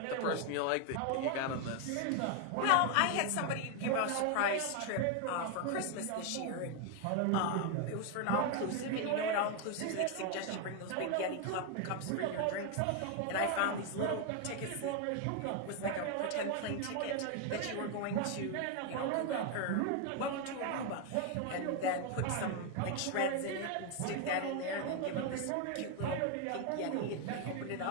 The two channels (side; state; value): both; different; correlation 0.01